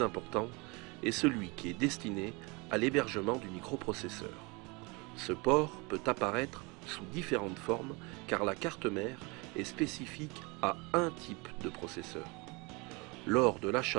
important est celui qui est destiné à l'hébergement du microprocesseur. Ce port peut apparaître sous différentes formes car la carte mère est spécifique à un type de processeur. Lors de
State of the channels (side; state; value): left; quieter; 27.8 dB